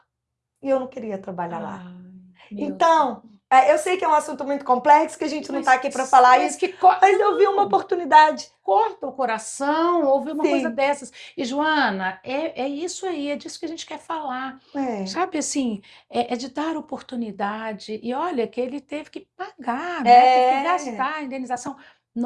E eu não queria trabalhar lá. Ai, meu Deus. Então, eu sei que é um assunto muito complexo, que a gente não está aqui para falar Mas isso, mas eu vi uma não, oportunidade. corta o coração ouvir uma coisa Sim, dessas. E, Joana, é isso aí, é disso que a gente quer falar. é, Sabe assim, é de dar oportunidade. E olha que ele teve que pagar, né? Teve que é, gastar a indenização.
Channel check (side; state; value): both; identical; correlation 1.00